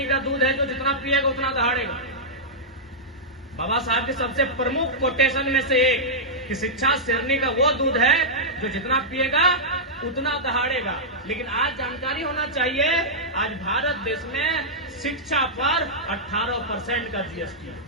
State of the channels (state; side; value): normal; both; correlation -0.10